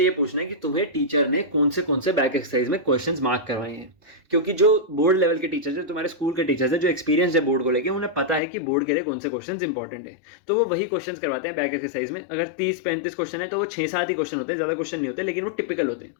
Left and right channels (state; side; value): drops out; right; at 8.4 s